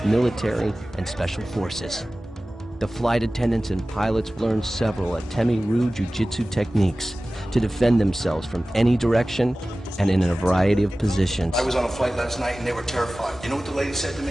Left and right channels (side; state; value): both; normal; correlation 0.97